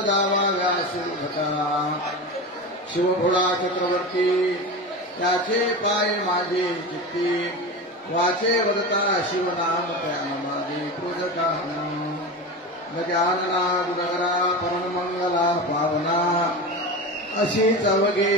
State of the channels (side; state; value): both; normal; correlation 0.26